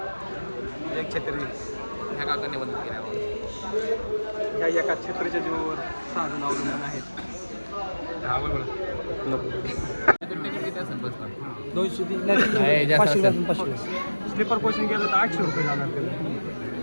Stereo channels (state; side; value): inverted; both; correlation -1.00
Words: एक छत्री ह्या काकांनी बंद केला. या एका छत्रीच्या जीवावर 6 जण अवलंबून आहेत. हा बोल. स्लीपर कोचिंग केलं तर 800 रुपये जाणार